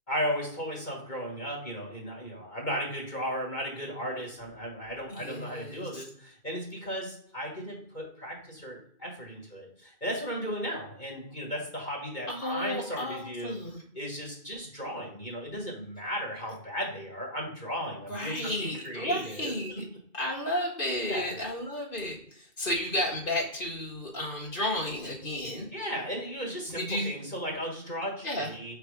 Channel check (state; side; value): late; right; 2.5 ms